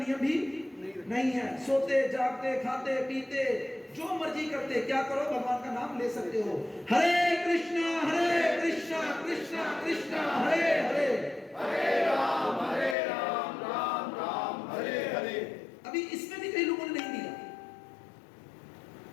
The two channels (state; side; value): drops out; right; at 13.0 s